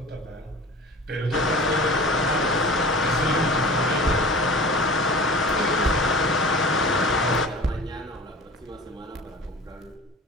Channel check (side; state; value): both; normal; correlation 0.40